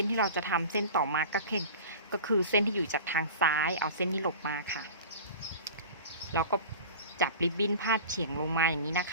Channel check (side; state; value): both; inverted; correlation -0.36